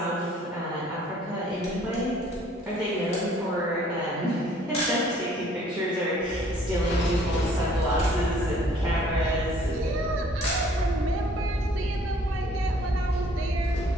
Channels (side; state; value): both; normal; correlation 0.58